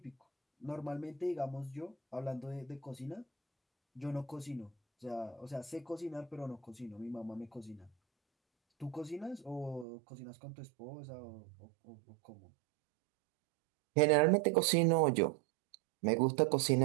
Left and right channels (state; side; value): drops out; left; at 9.9 s